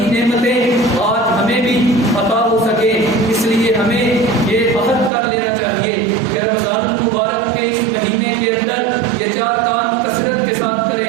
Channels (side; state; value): left; drops out; at 5.1 s